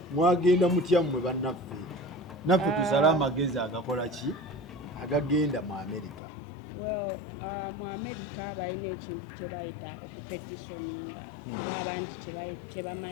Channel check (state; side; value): drops out; right; at 6.2 s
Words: mwagenda mutya mmwe bannaffe tusala amagezi agakola ki agagenda mu America mu America balina ekintu kye bayita okupetitioninga oba abangi kye